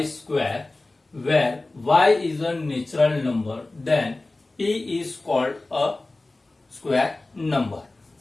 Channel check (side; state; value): right; quieter; 3.0 dB